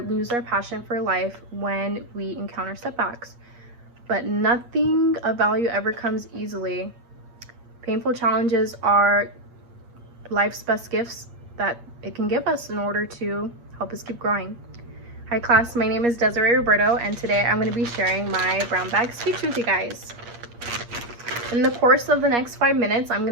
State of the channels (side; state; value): left; late; 8.4 ms